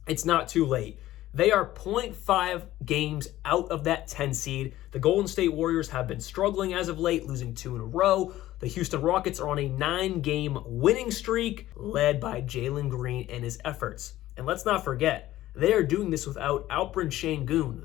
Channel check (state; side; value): quieter; right; 14.9 dB